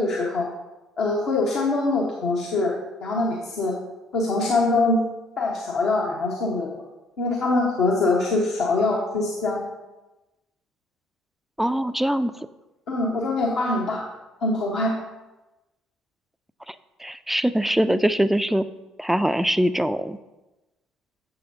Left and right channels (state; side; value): normal; both; correlation 0.70